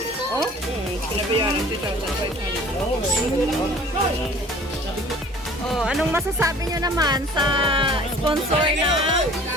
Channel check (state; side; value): normal; both; correlation 0.48